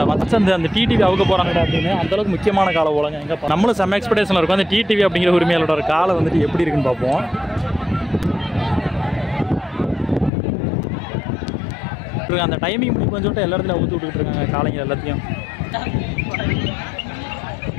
மற்ற அந்த டிடிவி அவுக்க போகிறாங்கடா அப்படின்னு. அந்தளவுக்கு முக்கியமான காலை போலங்க. எங்கே நம்மளும் செம்ம எக்ஸ்பெக்டேஷனில் இருக்கும். அந்த டிடிவி அப்படிங்கிற உரிமையாளரோட ஒரு காலை வந்துட்டு எப்படி இருக்குன்னு பார்ப்போம். அந்த டைமிங் இப்படி கொஞ்சம் எல்லா இடத்துல ஊற்றி விட்டுக்கிட்டு இருக்காங்க காலைங்க எல்லாத்தையும்.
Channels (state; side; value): drops out; right; at 10.3 s